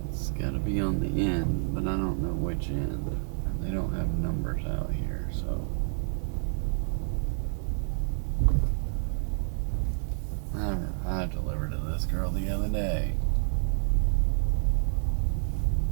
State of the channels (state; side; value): silent; left; digital silence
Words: It's got to be on the end, but I don't know which end. They don't have numbers out here, so. I delivered to this girl the other day.